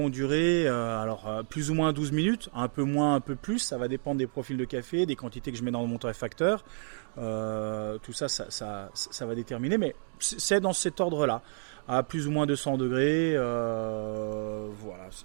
durer plus ou moins 12 minutes, un peu moins, un peu plus, ça va dépendre des profils de café, des quantités que je mets dans mon torréfacteur, tout ça va déterminer, mais c'est dans cet ordre-là, à plus ou moins 200 degrés, voilà,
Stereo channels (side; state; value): left; silent; 58 dB below the other